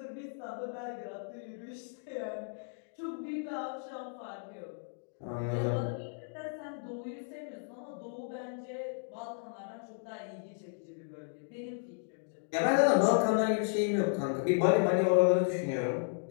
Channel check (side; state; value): right; silent; digital silence